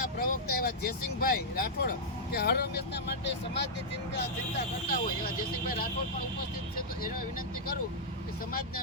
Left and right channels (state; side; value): normal; both; correlation -0.07